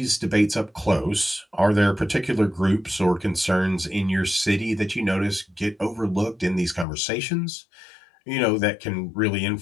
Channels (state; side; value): drops out; right; at 6.9 s